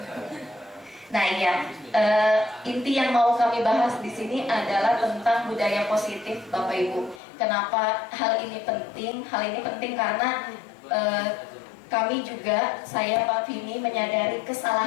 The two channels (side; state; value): right; drops out; at 7.2 s